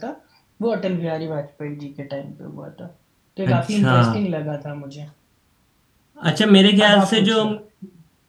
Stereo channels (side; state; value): both; identical; correlation 1.00